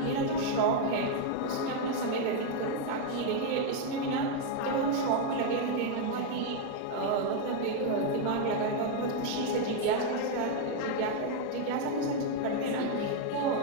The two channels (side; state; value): both; different; correlation 0.00